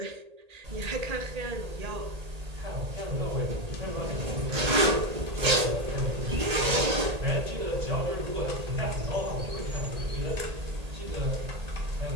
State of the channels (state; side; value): late; left; 1.8 ms